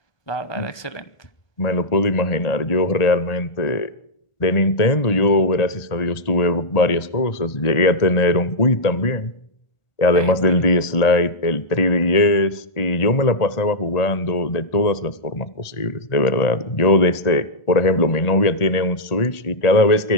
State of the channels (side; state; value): right; late; 1.4 ms